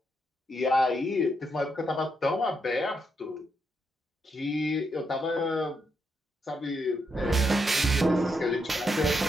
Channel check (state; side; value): normal; both; correlation 0.80